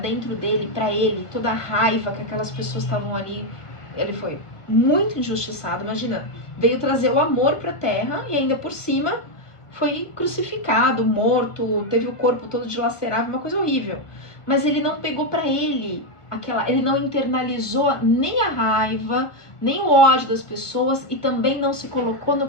dele, pra ele, toda a raiva que aquelas pessoas estavam ali. Ele foi muito injustiçado, imagina. Veio trazer o amor pra terra e ainda por cima foi crucificado, morto, teve o corpo todo dilacerado, uma coisa horrível. Mas ele não pegou pra ele ele não internalizou nem a raiva, nem o ódio das pessoas e também não se colocou no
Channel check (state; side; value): late; right; 1.5 ms